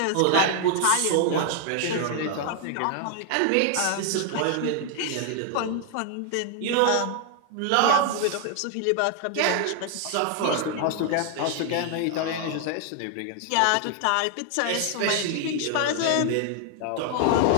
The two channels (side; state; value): both; different; correlation 0.00